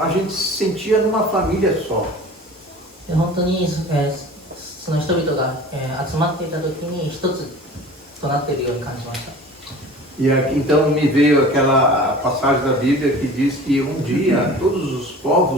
a gente se sentia numa família só. で本当に、その人々が、集まっていた時に一つとなっているように感じました。 E então me veio aquela passagem da Bíblia que diz que um dia todos os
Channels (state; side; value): normal; both; correlation 0.41